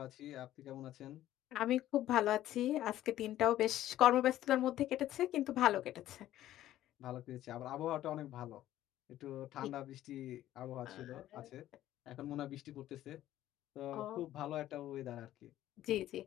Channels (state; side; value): quieter; right; 13.4 dB